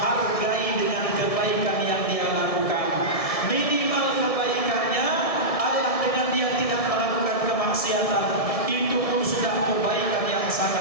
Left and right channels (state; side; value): late; right; 1.7 ms